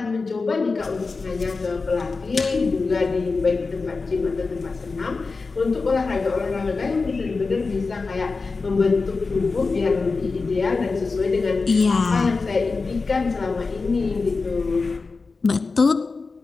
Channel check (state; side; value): quieter; right; 4.2 dB